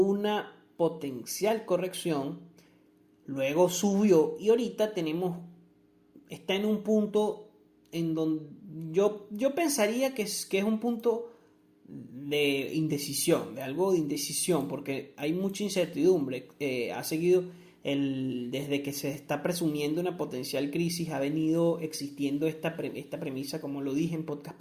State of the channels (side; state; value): both; identical; correlation 1.00